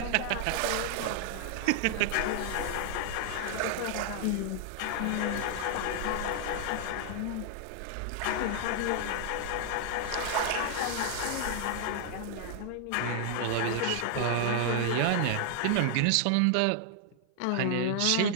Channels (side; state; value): both; different; correlation 0.00